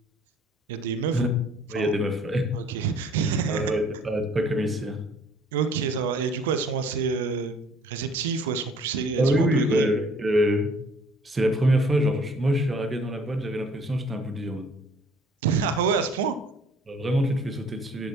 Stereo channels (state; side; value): normal; both; correlation 0.56